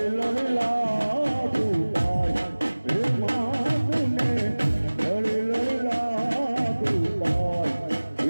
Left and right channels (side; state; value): both; inverted; correlation -1.00